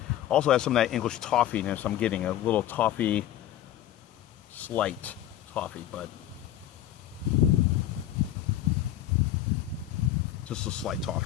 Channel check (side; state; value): right; quieter; 12.2 dB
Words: also has some of that English toffiness. I'm getting a little toffee, slight toffee, but just a slight